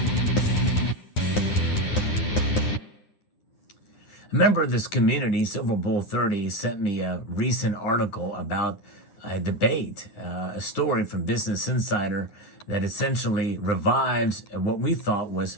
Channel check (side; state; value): right; late; 9.8 ms